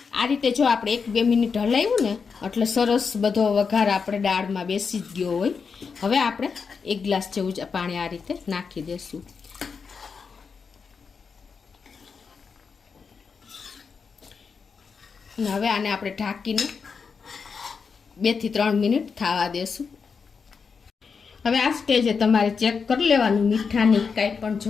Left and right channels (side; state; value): right; quieter; 5.6 dB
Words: આ રીતે જો આપણે 1-2 મિનિટ હલાવ્યું ને એટલે સરસ બધો વઘાર આપણે દાળમાં બેસી જ ગયો હોય. હવે આપણે 1 ગ્લાસ જેવું જ પાણી આ રીતે નાખી દઈશું. અને હવે આને આપણે ઢાંકીને 2 થી 3 મિનિટ થવા દેશું. હવે આ સ્ટેજે તમારે ચેક કરી લેવાનું મીઠાની કાંઈ પણ